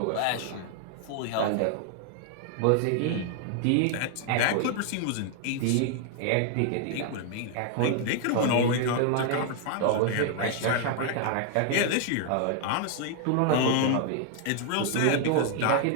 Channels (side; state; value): both; different; correlation 0.00